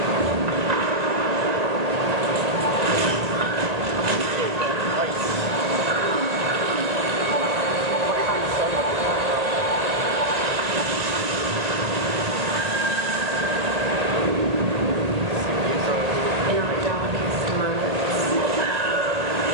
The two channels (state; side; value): late; left; 1.8 ms